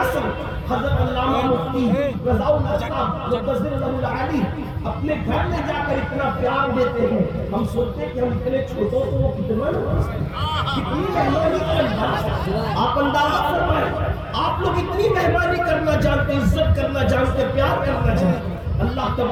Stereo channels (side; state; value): both; identical; correlation 1.00